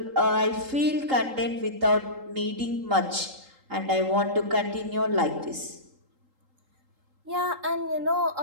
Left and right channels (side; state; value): left; late; 3.8 ms